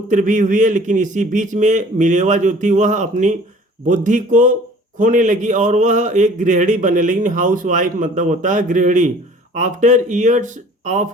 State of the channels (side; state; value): both; normal; correlation 0.50